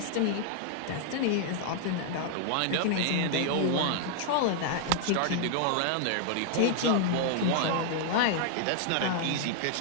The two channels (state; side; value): different; both; correlation 0.00